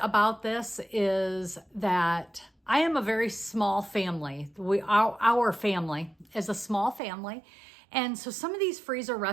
this is that I am a very small family. Our family is a small family. And so some of these freezer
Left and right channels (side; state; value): left; drops out; at 7.0 s